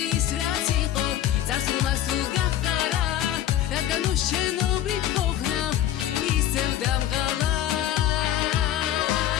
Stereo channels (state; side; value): quieter; right; 12.0 dB